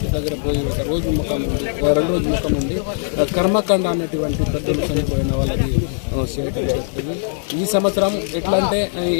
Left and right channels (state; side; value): silent; right; digital silence